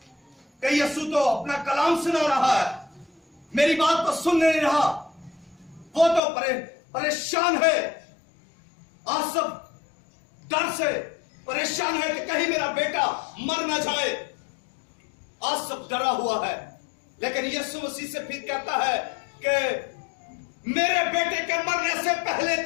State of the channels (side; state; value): right; drops out; at 6.2 s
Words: कि यीशु तो अपना कलाम सुना रहा है, मेरी बात तो सुन नहीं रहा, वो तो परेशान है। आसफ डर से परेशान है कि कहीं मेरा बेटा मर ना जाए। आसफ डरा हुआ है, लेकिन यीशु मसीह से फिर कहता है कि मेरे बेटे के मरने से पहले